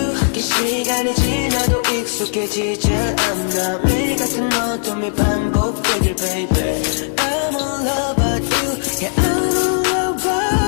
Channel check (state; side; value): silent; right; 67 dB below the other